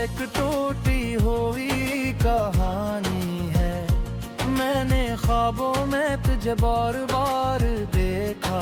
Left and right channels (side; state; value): both; identical; correlation 1.00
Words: टूटी हुई कहानी है। मैंने ख्वाबों में तुझे बार बार